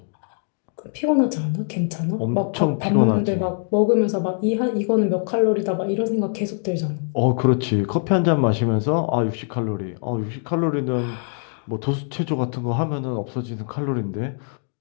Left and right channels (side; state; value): right; silent; 60 dB below the other